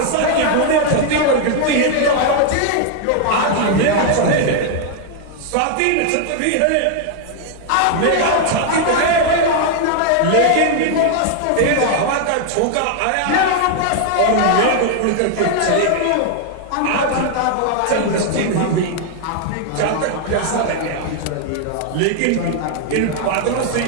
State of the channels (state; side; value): different; both; correlation 0.00